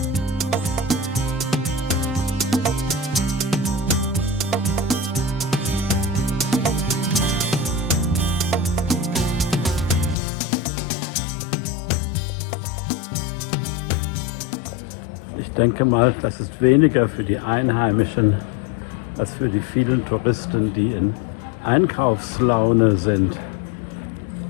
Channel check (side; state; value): right; drops out; at 10.2 s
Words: Ich denke mal, das ist weniger für die Einheimischen als für die vielen Touristen, die in Einkaufslaune sind